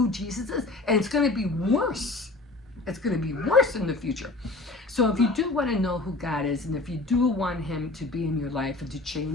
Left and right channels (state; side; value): quieter; right; 3.1 dB